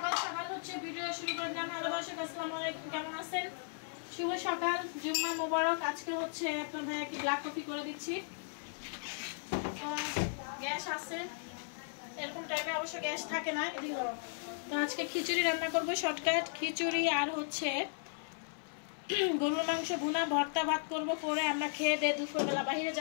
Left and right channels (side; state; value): right; silent; 54 dB below the other